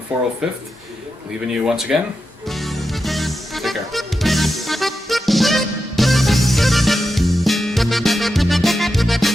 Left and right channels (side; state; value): both; normal; correlation 0.89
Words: 405th, leaving you once again